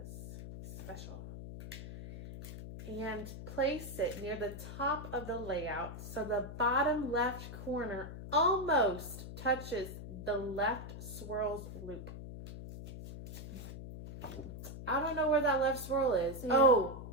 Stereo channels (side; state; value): left; noise; hum, 10 dB below the sound